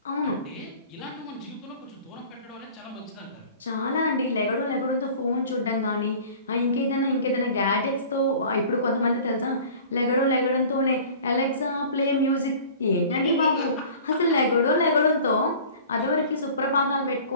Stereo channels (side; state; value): both; inverted; correlation -0.44